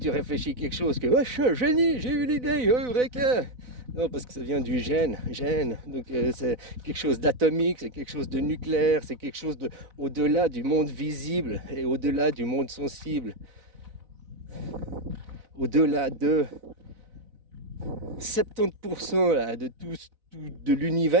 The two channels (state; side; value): late; left; 4.0 ms